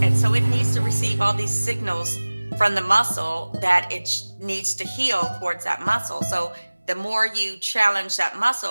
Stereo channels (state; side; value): inverted; both; correlation -1.00